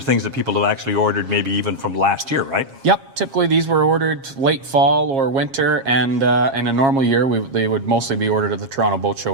things that people have actually ordered maybe even from last year, right? Yep, typically these were ordered late fall or winter, and in a normal year they would mostly be ordered at the Toronto Boat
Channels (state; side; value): late; left; 7.4 ms